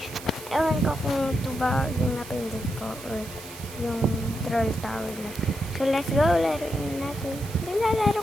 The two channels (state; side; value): noise; right; hiss, 15 dB below the sound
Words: Ewan ko kung 2 ba yung napindot ko or yung Troll Tower na. So let's go, laruin natin.